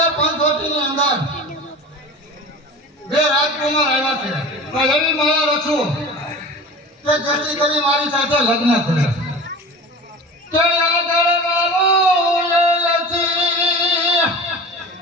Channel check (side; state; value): both; normal; correlation 0.35